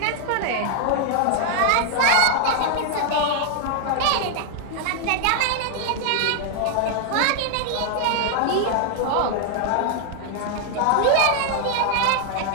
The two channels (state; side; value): different; both; correlation 0.00